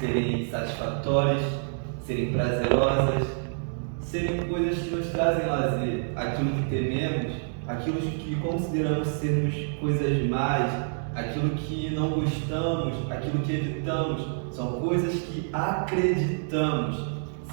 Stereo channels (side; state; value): left; silent; digital silence